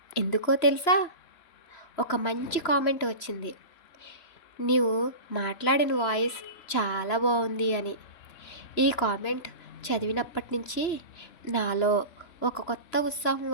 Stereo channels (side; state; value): right; late; 3.0 ms